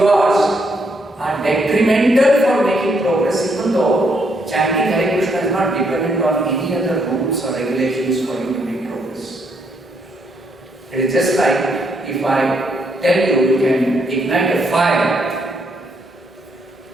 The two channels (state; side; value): normal; both; correlation 0.74